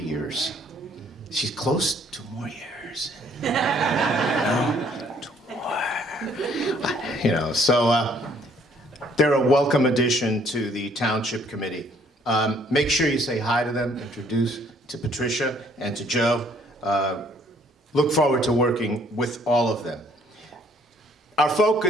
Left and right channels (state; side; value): normal; both; correlation 0.62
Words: She's close to more years. You know, so they're a welcome addition to the Township Committee. Make sure you say hi to them, introduce to Patricia and to Joe. Look forward to working with all of them. Our